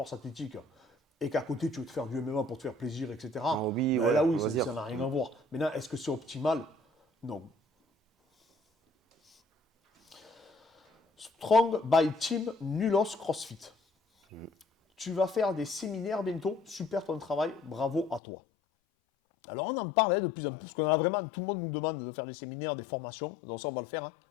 athlétique, et qu'à côté, tu veux te faire du MMA pour te faire plaisir, etc., hobby, ben là, oui, on va dire. ça n'a rien à voir. Maintenant, est-ce que c'est optimal? Non. Strong by Team Nulos CrossFit. Tu vas faire des séminaires bientôt. Super ton travail. Bravo à toi. Alors, on en parle de plus en plus, parce qu'on a vraiment, tout le monde nous demande de faire des séminaires, des formations. Donc, ça, on va le faire.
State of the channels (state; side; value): drops out; right; at 18.2 s